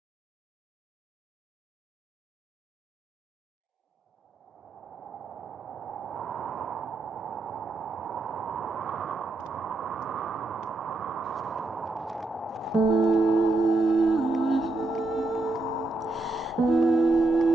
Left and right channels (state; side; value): quieter; left; 3.1 dB